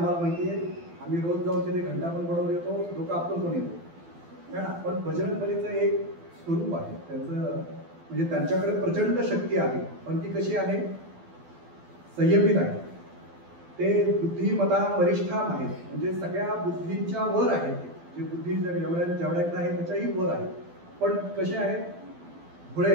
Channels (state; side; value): late; left; 12 ms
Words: माहिती आहे, आम्ही रोज जाऊन तिथे घंटा पण बनवून येतो, लोक आपण पण येतो है ना. पण बजरंगबलीचं एक स्वरूप आहे, त्यांचं म्हणजे त्यांच्याकडे प्रचंड शक्ती आहे, पण ती कशी आहे? संयमित आहे. ते बुद्धिमत्ता वरिष्ठाम आहेत, म्हणजे सगळ्या बुद्धींच्या वर आहेत. जे बुद्धी जेवढ्याकडे आहे त्याच्याही वर आहे, पण कसे आहेत? भोळे